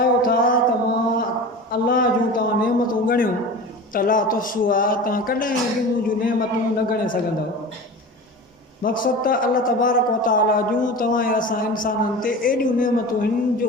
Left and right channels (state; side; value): normal; both; correlation 0.33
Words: था त मां अल्लाह जूं तव्हां नेमतूं ॻणियो त ला तुहसूहा तव्हां कॾहिं बि मुंहिंजूं नेमतूं न ॻणे सघंदव मक़सदु त अल्लाह तबारक व तआला जूं तव्हां ऐं असां इंसाननि ते एॾियूं नेमतूं आहिनि